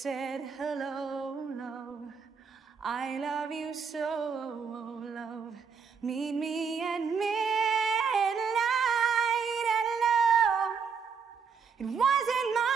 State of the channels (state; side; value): quieter; left; 6.0 dB